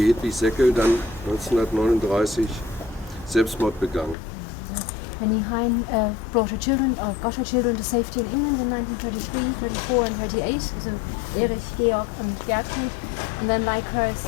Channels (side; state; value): right; drops out; at 4.2 s